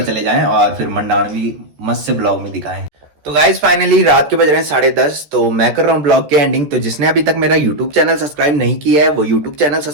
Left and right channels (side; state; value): left; late; 14 ms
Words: चले जाएं और फिर मंडाना भी मस्त से ब्लॉग में दिखाएं। तो गाइज फाइनली रात के बज रहे हैं 10:30, तो मैं कर रहा हूँ ब्लॉग के एंडिंग। तो जिसने अभी तक मेरा यूट्यूब चैनल सब्सक्राइब नहीं किया है वो यूट्यूब चैनल